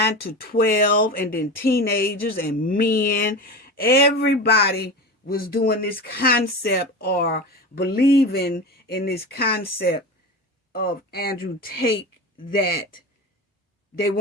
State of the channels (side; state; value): both; normal; correlation 0.27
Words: to 12, and then teenagers and men. Everybody was doing this concept or believing in this concept of Andrew Tate, that they